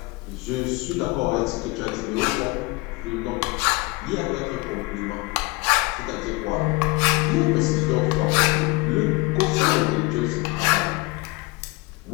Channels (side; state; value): right; quieter; 24.2 dB